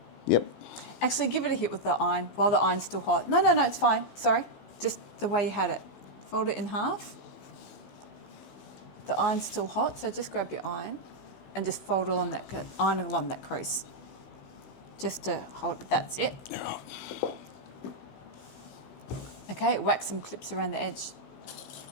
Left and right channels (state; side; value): late; right; 15 ms